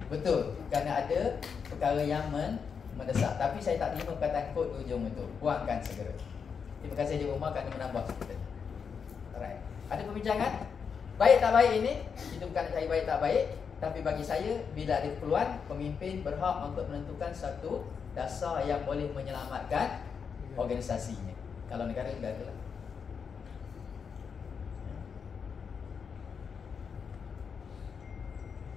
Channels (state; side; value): quieter; right; 6.3 dB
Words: Betul, kerana ada perkara yang mendesak. Tapi saya tak terima perkataan kod di ujung itu. Buangkan segera. Terima kasih di rumah kerana menambah kita. Alright. Ada perbincangan? Baik tak baik ini, kita bukan nak cari baik tak baik. Tapi bagi saya, bila ada keperluan, pemimpin berhak untuk menentukan satu dasar yang boleh menyelamatkan organisasinya. Kalau negara tidak adalah.